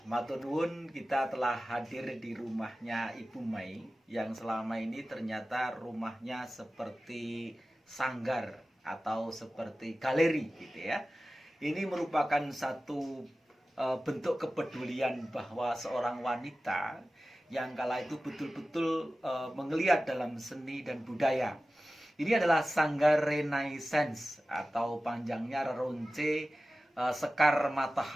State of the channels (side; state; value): both; normal; correlation 0.95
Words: Matur nuwun, kita telah hadir di rumahnya Ibu Mai yang selama ini ternyata rumahnya seperti sanggar atau seperti galeri gitu ya. Ini merupakan satu bentuk kepedulian bahwa seorang wanita yang kala itu betul-betul menggeliat dalam seni dan budaya. Ini adalah Sanggar Renaissance atau panjangnya Reronce Sekar